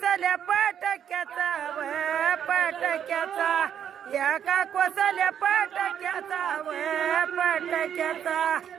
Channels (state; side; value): quieter; left; 9.0 dB